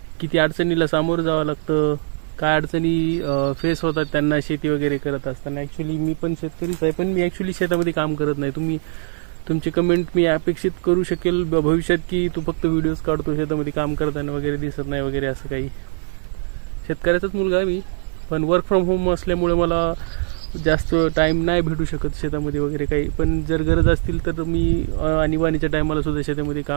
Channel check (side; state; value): left; silent; 59 dB below the other